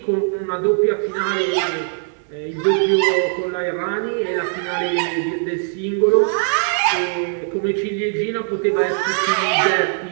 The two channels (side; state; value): left; silent; 66 dB below the other